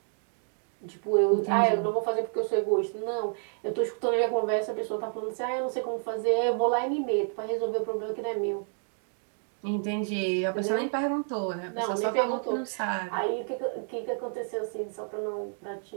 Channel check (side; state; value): left; silent; 58 dB below the other